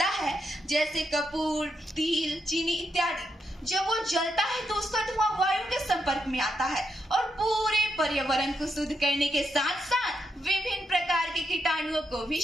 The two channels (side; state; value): both; normal; correlation 0.82